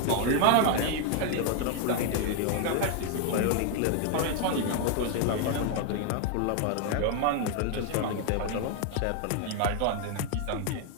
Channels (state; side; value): different; both; correlation 0.00